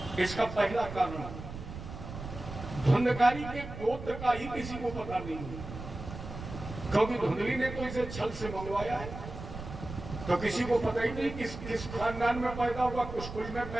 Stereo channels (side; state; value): right; noise; rumble, 10 dB below the sound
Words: इसका पहला कारण, धुंधकारी के गोत्र का ही किसी को पता नहीं है, क्योंकि धुंधली ने तो इसे छल से मंगवाया है, तो किसी को पता ही नहीं किस खानदान में पैदा हुआ, किस कुल में